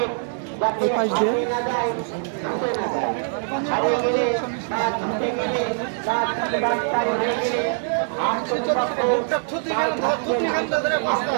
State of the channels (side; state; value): left; silent; digital silence